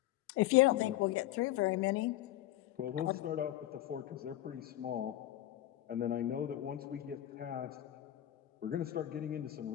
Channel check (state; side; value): quieter; right; 14.1 dB